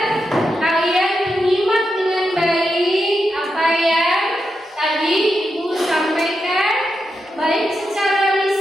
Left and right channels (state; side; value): normal; both; correlation 0.86